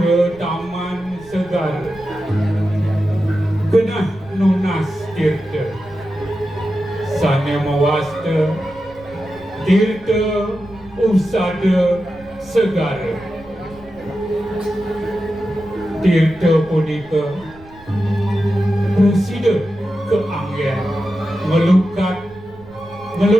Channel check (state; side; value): noise; right; rumble, 22 dB below the sound